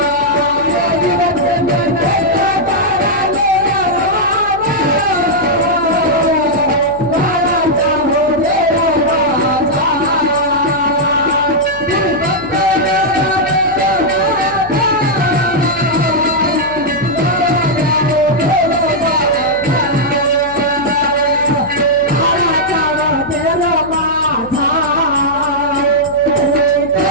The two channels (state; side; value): noise; left; hum, 18 dB below the sound